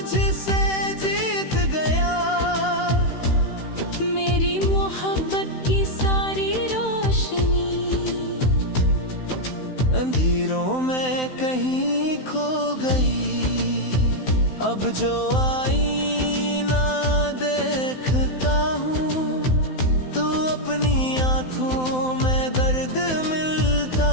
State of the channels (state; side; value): late; right; 16 ms